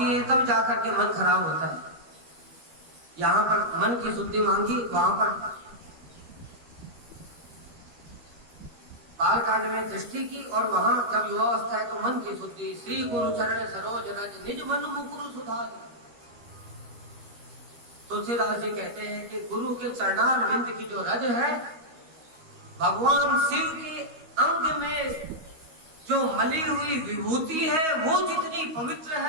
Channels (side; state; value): left; late; 13 ms